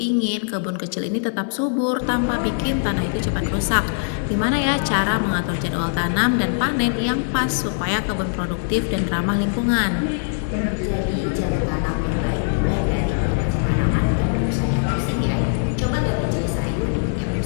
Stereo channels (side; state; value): right; silent; digital silence